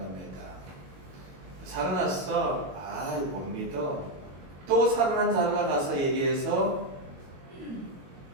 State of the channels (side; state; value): left; late; 22 ms